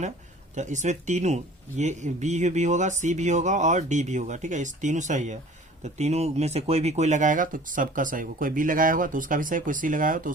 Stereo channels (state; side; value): normal; both; correlation 0.47